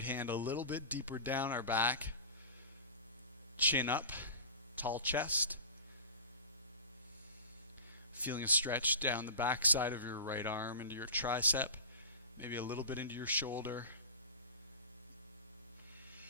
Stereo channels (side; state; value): both; inverted; correlation -0.34